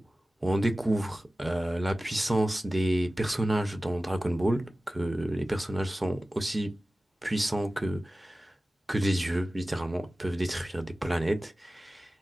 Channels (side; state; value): both; normal; correlation 0.96